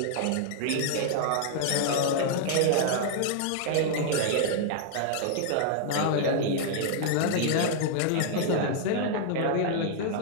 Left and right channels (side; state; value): both; different; correlation -0.01